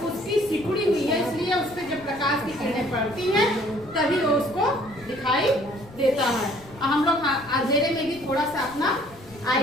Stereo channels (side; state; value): left; noise; rumble, 22 dB below the sound